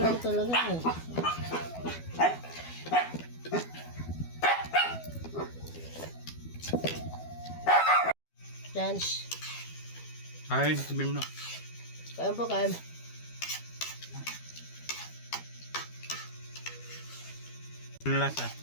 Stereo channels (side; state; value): right; late; 12 ms